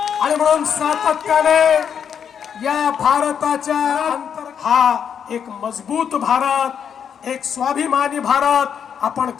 आणि म्हणून सातत्याने या भारताच्या हा एक मजबूत भारत, एक स्वाभिमानी भारत आपण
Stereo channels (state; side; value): quieter; right; 7.8 dB